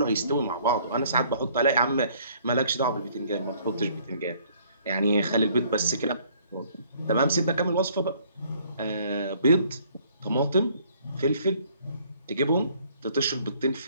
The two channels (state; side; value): inverted; both; correlation -0.61